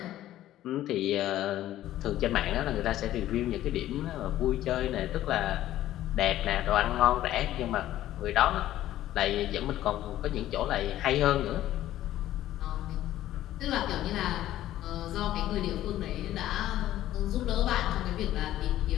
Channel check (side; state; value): right; quieter; 13.6 dB